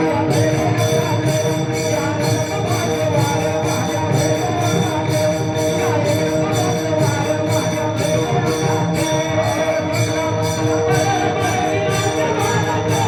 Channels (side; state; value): both; identical; correlation 1.00